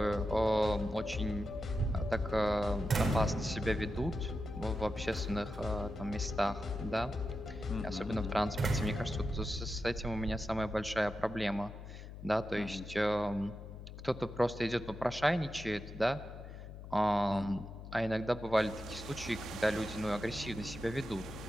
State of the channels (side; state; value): left; noise; hum, 12 dB below the sound